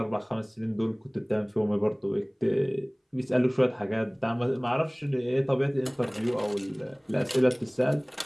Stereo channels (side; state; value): both; identical; correlation 1.00